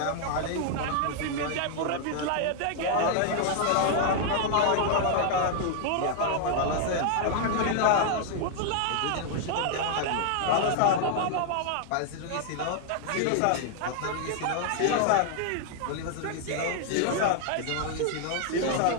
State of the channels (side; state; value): both; different; correlation 0.00